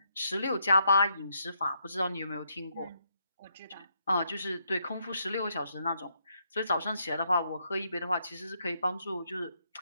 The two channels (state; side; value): inverted; both; correlation -0.77